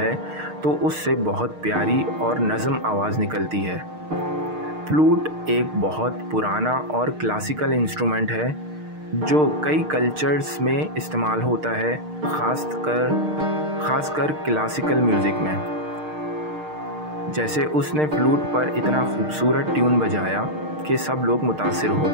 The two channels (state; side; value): late; left; 6.5 ms